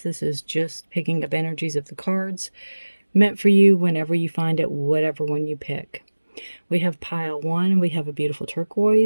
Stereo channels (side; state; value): both; inverted; correlation -1.00